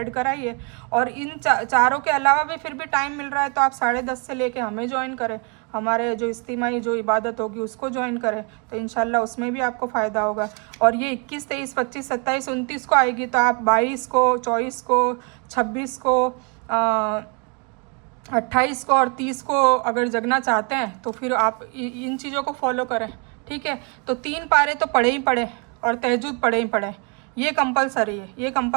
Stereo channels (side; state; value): left; quieter; 35.7 dB